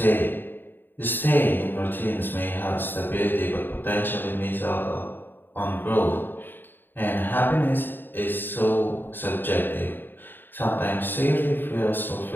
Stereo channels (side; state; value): right; late; 0.094 ms